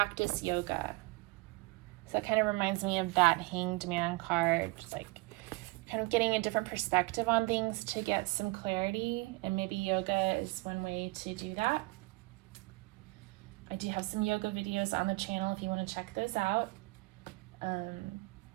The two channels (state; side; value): quieter; left; 24.3 dB